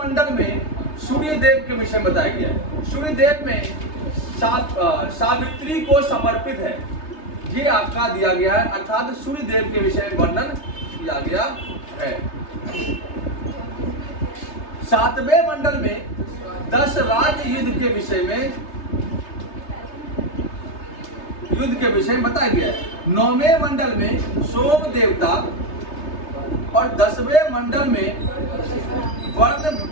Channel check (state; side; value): late; right; 3.3 ms